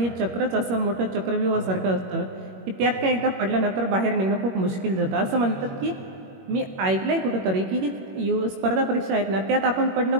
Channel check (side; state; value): left; late; 21 ms